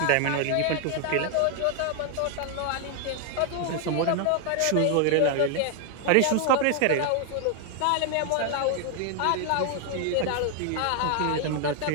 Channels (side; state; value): both; different; correlation 0.00